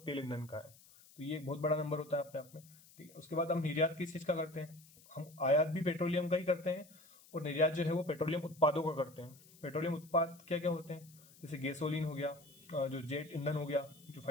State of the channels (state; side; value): noise; left; hiss, 24 dB below the sound